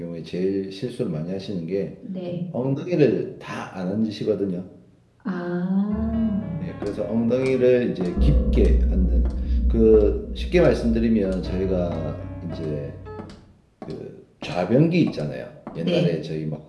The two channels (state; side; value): identical; both; correlation 1.00